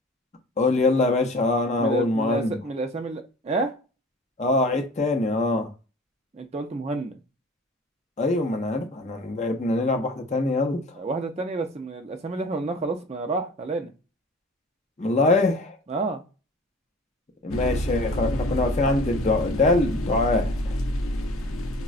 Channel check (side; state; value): both; normal; correlation 0.43